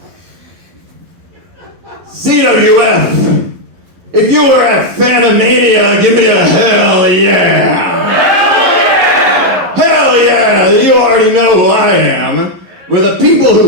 CWF, if you were at Fanime, give me a hell yeah! Hell yeah! You already know who I am. For the people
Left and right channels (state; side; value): late; left; 11 ms